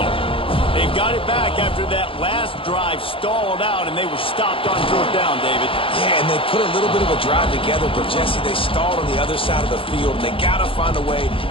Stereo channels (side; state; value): right; late; 0.26 ms